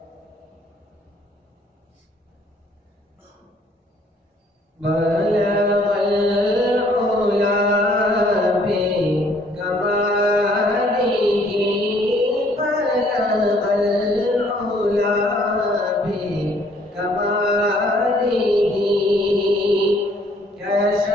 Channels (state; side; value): normal; both; correlation 0.62